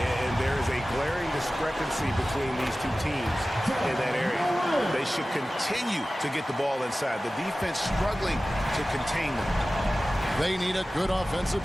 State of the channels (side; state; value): both; normal; correlation 0.96